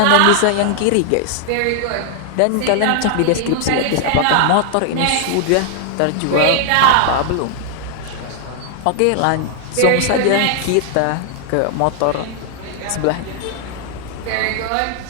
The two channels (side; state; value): both; different; correlation 0.00